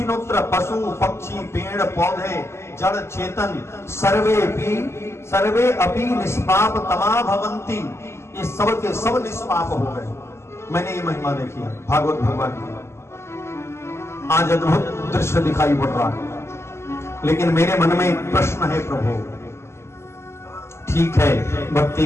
पशु पक्षी, पेड़ पौधे, जड़ चेतन, सर्वे अपि निष्पाप तमा भवन्ति, ये सब के सब निष्पाप हो गए। मैंने ये महिमा देखी है भागवत भगवान की। आज अद्भुत दृश्य दिखाई पड़ रहा है, लेकिन मेरे मन में एक प्रश्न है, प्रभु ठीक है, भक्ति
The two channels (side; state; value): right; late; 0.13 ms